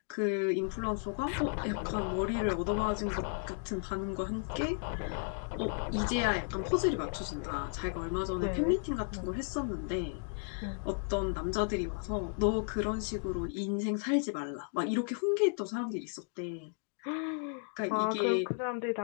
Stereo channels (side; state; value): right; silent; 55 dB below the other